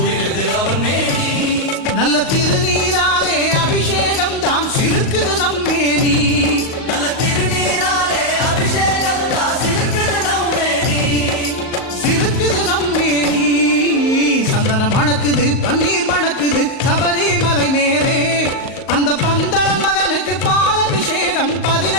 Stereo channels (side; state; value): right; late; 38 ms